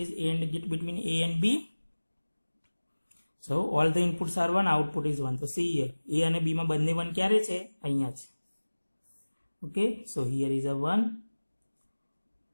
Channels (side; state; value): both; inverted; correlation -1.00